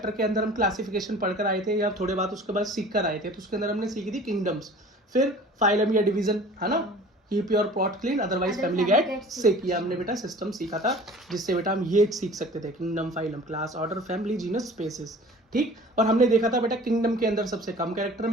के अंदर हम क्लासिफिकेशन पढ़कर आए थे या थोड़े बात उसके बाद सीख कर आए थे, तो उसके अंदर हमने सीखी थी किंगडम्स, फिर फाइलम या डिवीजन, है ना, keep your pot clean otherwise family get sick. ये हमने बेटा सिस्टम सीखा था जिससे बेटा हम ये सीख सकते थे kingdom, phylum, class, order, family, genus, species. ठीक, और हमने देखा था बेटा किंगडम के अंदर सबसे कम कैरेक्टर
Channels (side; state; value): both; normal; correlation 0.45